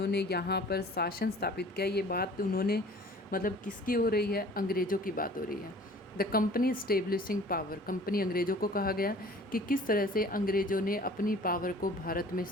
यहाँ पर शासन स्थापित किया। ये बात उन्होंने मतलब किसकी हो रही है? अंग्रेज़ों की बात हो रही है। The company establishing power, company अंग्रेज़ों को कहा गया कि किस तरह से अंग्रेज़ों ने अपनी पावर को भारत में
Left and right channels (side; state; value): both; normal; correlation 0.48